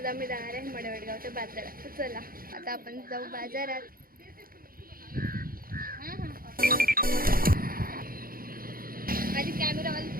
आम्ही जाणार आहे मडेवडगावच्या बाजारात. तर चला आता आपण जाऊ बाजारात. माझी कॅमेरावाली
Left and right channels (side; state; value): left; late; 0.42 ms